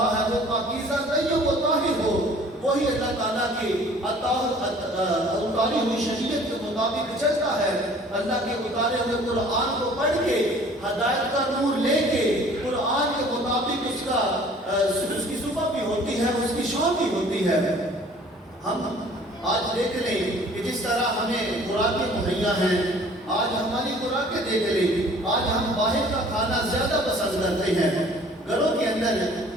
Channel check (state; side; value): normal; both; correlation 0.52